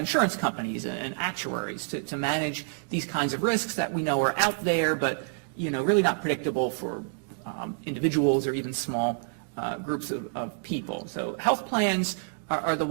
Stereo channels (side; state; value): left; silent; digital silence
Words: companies and actuaries to manage these kinds of risks that we know are out there, but really not predictable for individuals or even small groups of people. So health plans are the